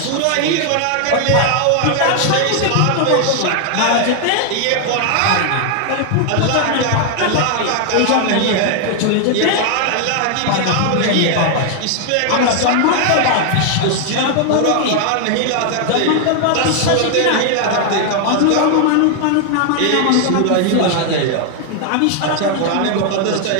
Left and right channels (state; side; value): different; both; correlation 0.00